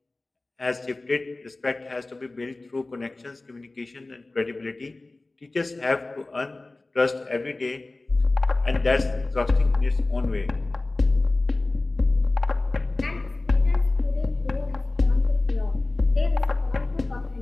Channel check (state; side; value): quieter; right; 3.1 dB